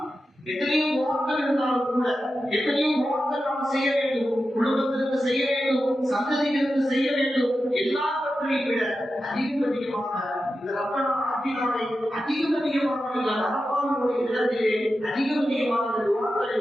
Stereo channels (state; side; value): normal; both; correlation 0.91